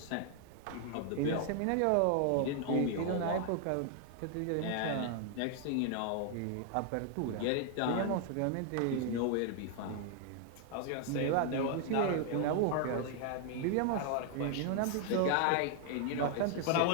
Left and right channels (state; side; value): different; both; correlation 0.00